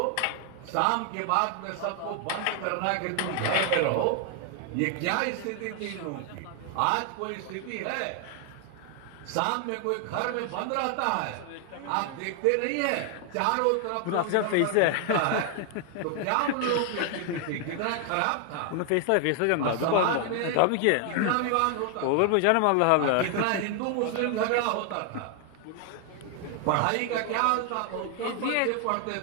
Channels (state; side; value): different; both; correlation 0.00